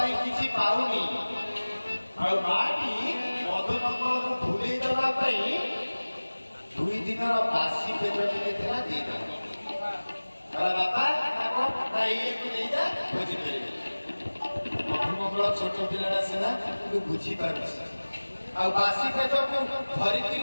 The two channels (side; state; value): both; inverted; correlation -1.00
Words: କିଛି ପାଉନି ଆଉ ମାଟି ମଧୁମଙ୍ଗଳକୁ ଭୁଲେଇ ଦେବା ପାଇଁ 2 ଦିନର ବାସି ପେଟ ଟିକେ ଥିଲା ଦେଇଦେବ। ବାପା ନା ଇଏକୁ ନେଇଯା ଭୋଜି କରିବେ। ମଧୁମଙ୍ଗଳ ଛୋଟ ପିଲାଟା ସିନା କିନ୍ତୁ ବୁଝିପାରୁଛି ଆଉ ବାସି ପେଟକୁ ଧରିକିରି